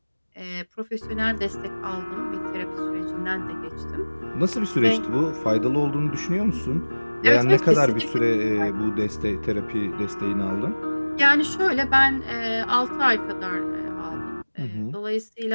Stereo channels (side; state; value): both; inverted; correlation -1.00